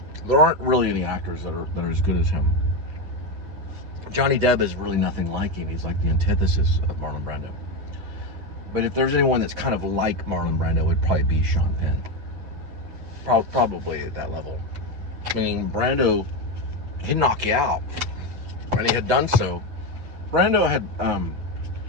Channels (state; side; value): late; left; 9.4 ms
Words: There aren't really any actors that are as good as him. Johnny Depp is really nothing like him. He's like the antithesis of Marlon Brando. But if there's anyone that's kind of like Marlon Brando, it would probably be Sean Penn. Probably at that level. I mean, Brando, he'd knock you out, and he had done so. Brando had